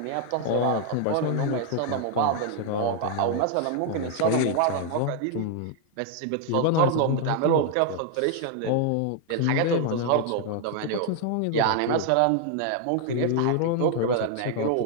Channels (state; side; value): different; both; correlation 0.00